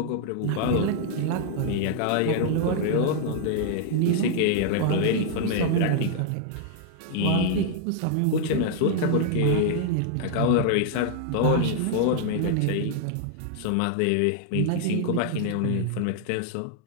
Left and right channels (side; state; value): both; different; correlation 0.00